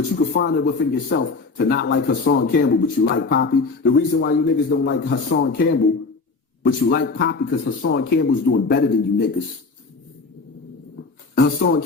you can find it within yourself to not like Hassan Campbell, but you like Poppy. The reason why you niggas don't like Hassan Campbell, but you like Poppy, because Hassan Campbell's doing better than you niggas. Hassan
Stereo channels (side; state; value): right; quieter; 4.1 dB